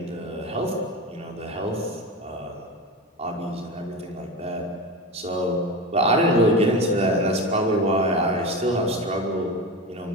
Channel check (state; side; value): normal; both; correlation 0.24